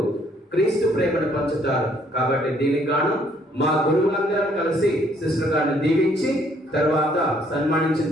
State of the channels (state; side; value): normal; both; correlation 0.65